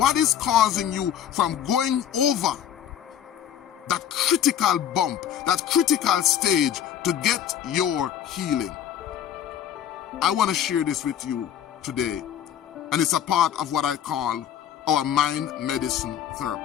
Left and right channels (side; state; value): right; quieter; 9.9 dB